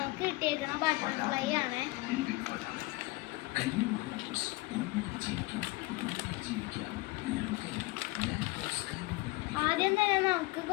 കിട്ടിയേക്കുന്ന ബട്ടർഫ്ലൈ ആണ്. ആദ്യം തന്നെ നമുക്ക്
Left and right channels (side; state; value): right; quieter; 21.8 dB